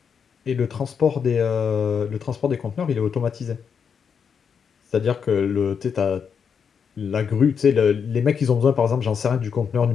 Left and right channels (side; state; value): right; quieter; 6.8 dB